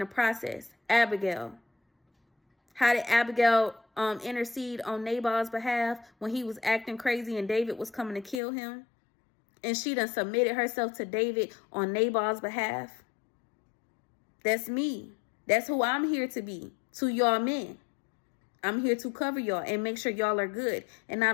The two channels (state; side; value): drops out; right; at 8.4 s